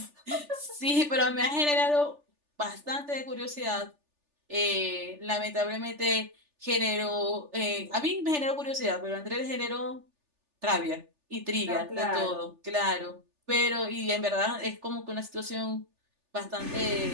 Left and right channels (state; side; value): late; left; 3.4 ms